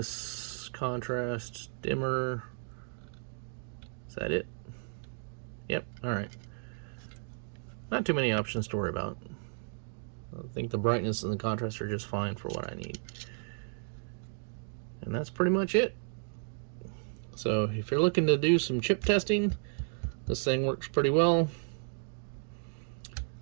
contrast, dimmer. Is that it? Yep, alright. Not too many options to worry about. I think the brightness and the contrast are just fine for what I need. And that's pretty much it. So if you're looking to do some chip testing, this thing works pretty well.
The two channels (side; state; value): left; silent; 56 dB below the other